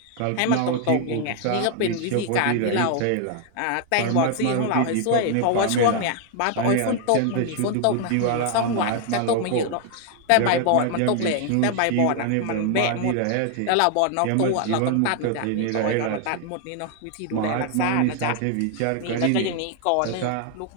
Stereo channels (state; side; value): different; both; correlation 0.00